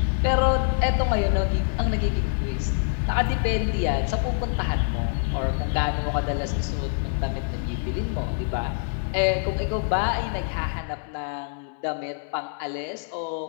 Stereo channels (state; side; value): silent; right; 61 dB below the other